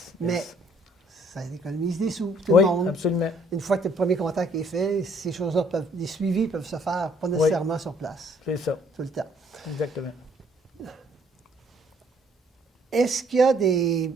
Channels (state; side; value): normal; both; correlation 0.63